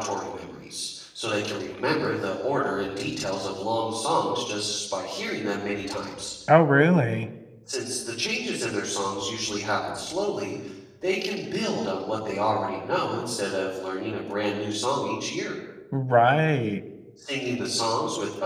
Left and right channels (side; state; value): both; identical; correlation 1.00